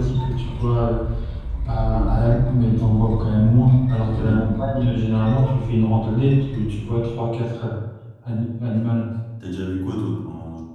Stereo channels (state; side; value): identical; both; correlation 1.00